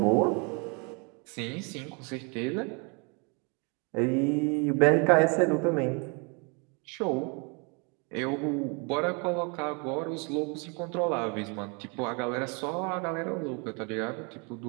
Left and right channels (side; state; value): left; quieter; 33.2 dB